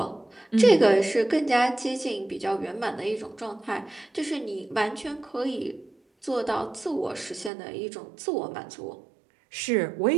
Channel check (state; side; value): drops out; left; at 7.5 s